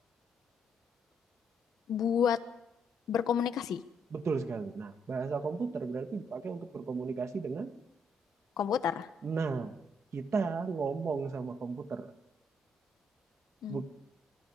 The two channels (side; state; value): both; normal; correlation 0.73